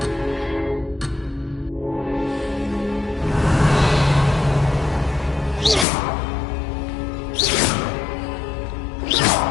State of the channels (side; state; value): right; drops out; at 5.9 s